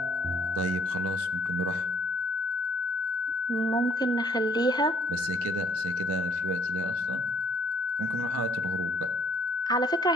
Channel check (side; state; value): both; normal; correlation 0.61